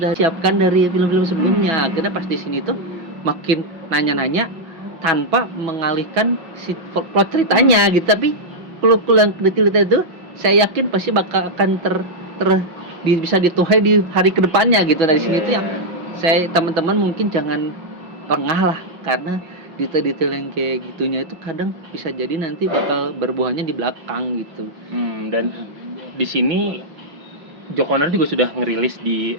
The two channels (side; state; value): left; late; 5.6 ms